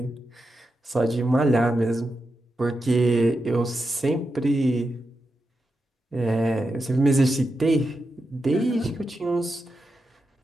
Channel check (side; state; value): both; normal; correlation 0.88